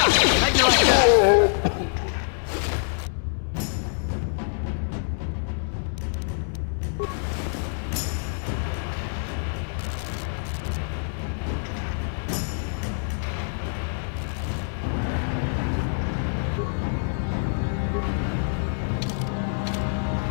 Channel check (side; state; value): right; silent; 61 dB below the other